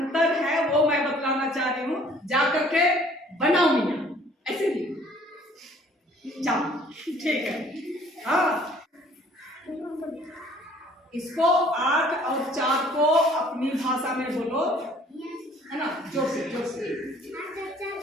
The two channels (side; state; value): both; normal; correlation 0.56